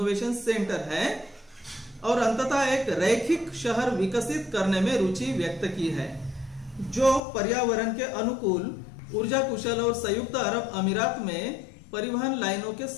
सेंटर है और अंततः एक रैखिक शहर विकसित करने में रुचि व्यक्त की है, जो पर्यावरण के अनुकूल, ऊर्जा कुशल और संयुक्त अरब अमीरात में परिवहन लाइनों के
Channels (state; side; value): drops out; right; at 7.2 s